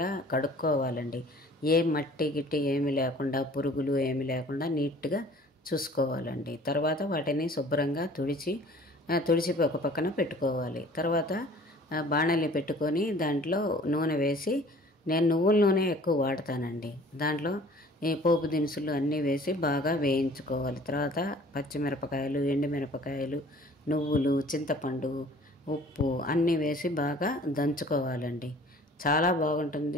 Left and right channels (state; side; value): normal; both; correlation 0.50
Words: కడుక్కోవాలండి. ఏ మట్టి గిట్టి ఏమి లేకుండా, పురుగులు ఏమి లేకుండా నీట్గా చూసుకోవాలండి. తర్వాత వాటిని శుభ్రంగా తుడిచి ఒక పక్కన పెట్టుకోవాలి. తర్వాత బాణలి పెట్టుకొని దాంట్లో నూనె వేసి, నేను నువ్వుల నూనె ఎక్కువ వాడతానండి. దాంట్లో ఈ పోపు దినుసులు అన్నీ వేసి బాగా వేయించుకోవాలి. తర్వాత పచ్చిమిరపకాయలు, ఎండుమిరపకాయలు, నువ్వులు, చింతపండు, ఉప్పు అన్నీ వేసి బాగా దంచుకోవాలండి. చాలా